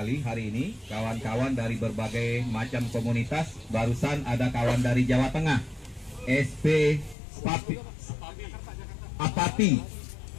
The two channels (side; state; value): right; drops out; at 7.2 s